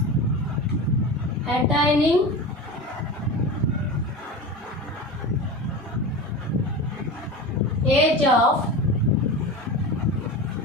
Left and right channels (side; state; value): both; normal; correlation 0.28